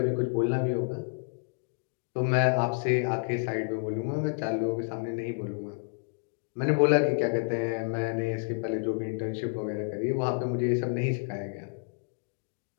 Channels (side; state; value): right; silent; digital silence